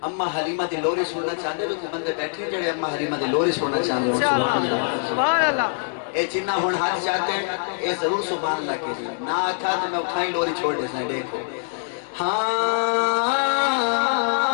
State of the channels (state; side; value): silent; right; digital silence